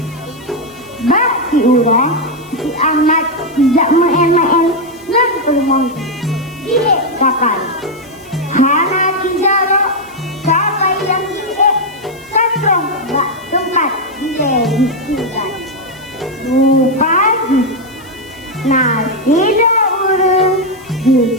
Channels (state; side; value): noise; left; hiss, 25 dB below the sound